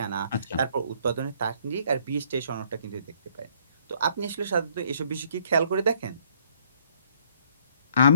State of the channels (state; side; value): inverted; both; correlation -0.64